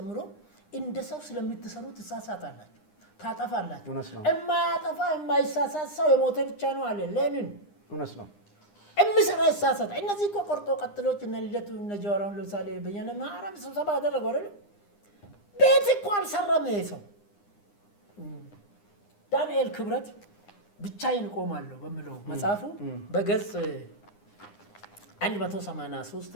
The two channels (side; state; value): right; late; 9.8 ms